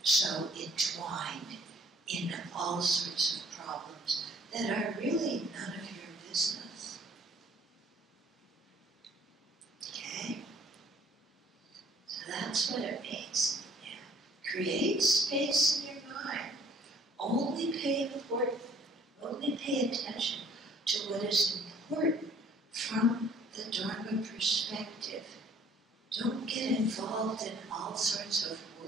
so entwined in all sorts of problems that are really none of your business. Okay? So that's what it means. Yeah. Create space in your mind. Only pay attention to what is important from the Dharma perspective. Don't get involved in all sorts of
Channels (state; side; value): normal; both; correlation 0.57